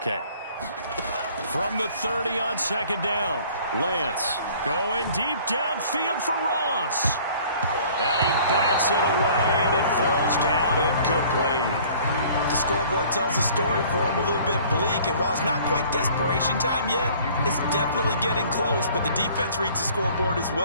From the 30 on second down, Lance going deep downfield for Ross. And he bats it away, and it falls down incomplete. The scoreboard tells a story for him, a little bit bleak, and while it's not quite desperation time yet, it's definitely getting close, but the defense reads the scoreboard as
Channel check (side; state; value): both; inverted; correlation -0.52